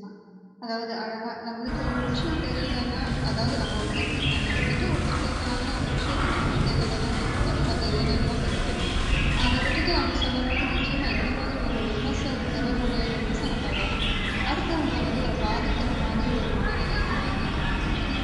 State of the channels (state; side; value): identical; both; correlation 1.00